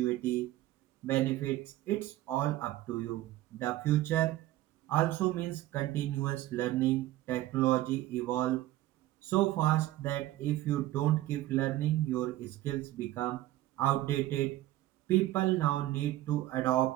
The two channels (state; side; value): quieter; left; 15.6 dB